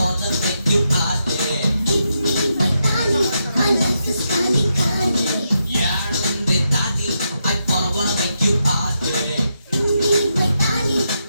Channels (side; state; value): both; inverted; correlation -0.83